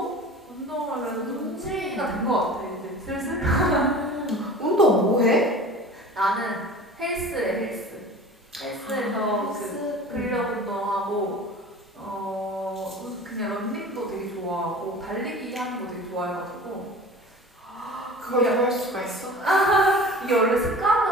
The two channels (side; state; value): both; normal; correlation 0.40